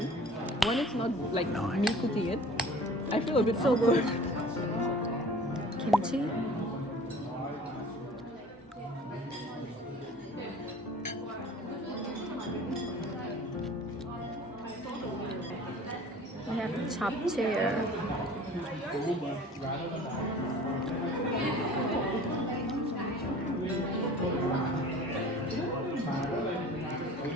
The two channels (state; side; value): normal; both; correlation 0.45